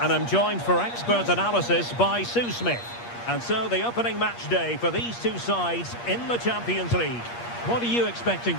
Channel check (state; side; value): late; right; 8.5 ms